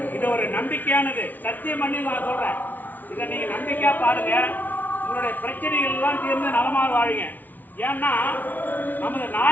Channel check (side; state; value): right; late; 0.082 ms